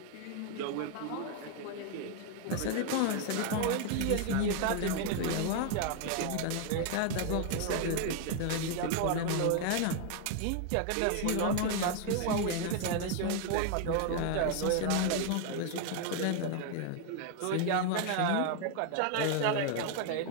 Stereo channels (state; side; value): different; both; correlation 0.00